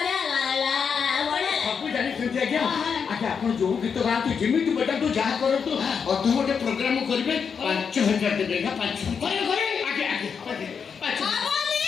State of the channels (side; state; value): right; quieter; 6.4 dB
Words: ଲାଗଲା ବଢିଆ ସବୁ ଜାଣିଛନ୍ତି ଆଜ୍ଞା ଆଜ୍ଞା ଆପଣ ଯୋଉ ଗୀତ ଗାଆନ୍ତୁ ଯେମିତି ବଜାନ୍ତୁ ଯାହା କରନ୍ତୁ ଅଧଘଣ୍ଟେ ପ୍ରୋଗ୍ରାମ କରିବେ 5,000 ଦେବେ ନା 5,000 କରିବେ କରିବେ ଆଜ୍ଞା ଆଜ୍ଞା 5,000